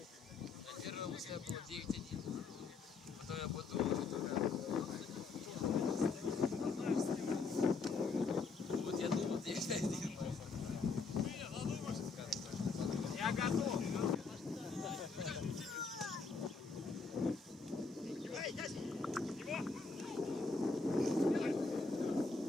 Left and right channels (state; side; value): quieter; right; 4.3 dB